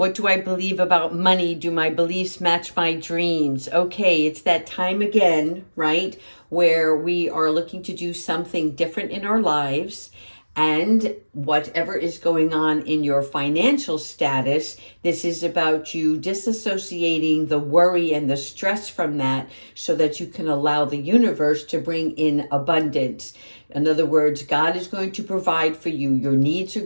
do I believe about money? Do my beliefs match my dreams? Okay, it's that time again, right? Where we are looking to do something different in our lives. And whatever is going on in your financial status, this is about you disassociating the worry and the stress from that so that you can allow the universe to bring in abundance. In other words, God is going to provide for you. Your needs are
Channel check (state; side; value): inverted; both; correlation -1.00